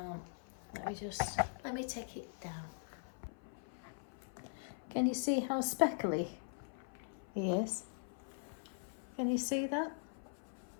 Let me take it down. Can you see how speckly he is? Can you see that?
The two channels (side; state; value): right; silent; 50 dB below the other